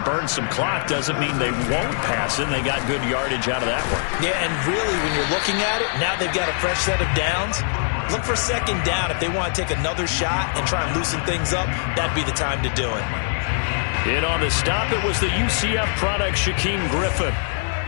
burn some clock doesn't mean they won't pass it. They got good yardage out of that one. Yeah, and really, when you're looking at it, now they've got a fresh set of downs. Look for second down. If they want to take another shot and try and loosen things up, that'd be the time to do it. In on the stop, it was the UCF product, Shaquem Griffin.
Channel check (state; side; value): silent; right; digital silence